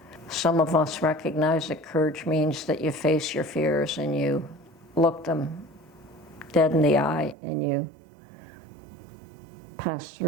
Some of us recognize that courage means that you face your fears and you look them dead in the eye and you pass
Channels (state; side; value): drops out; left; at 7.4 s